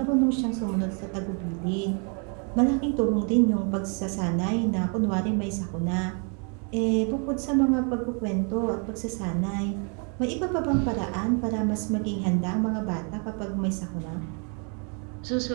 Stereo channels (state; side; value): quieter; left; 38.5 dB